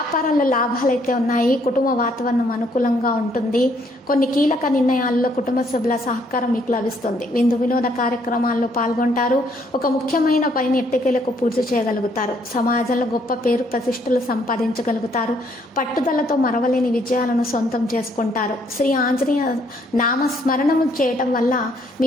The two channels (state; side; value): normal; both; correlation 0.68